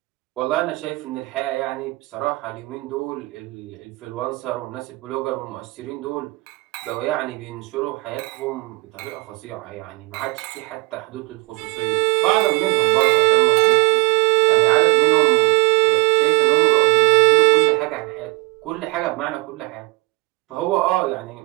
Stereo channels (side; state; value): left; quieter; 23.8 dB